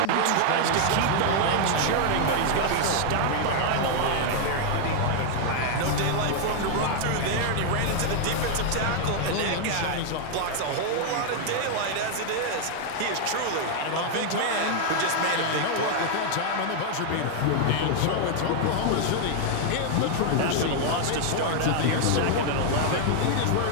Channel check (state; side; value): different; both; correlation 0.00